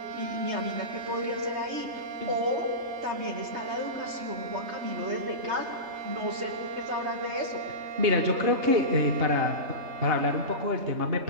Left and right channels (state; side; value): late; left; 3.3 ms